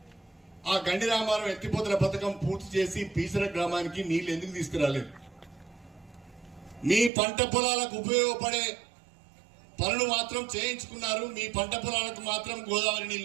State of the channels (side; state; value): left; drops out; at 7.1 s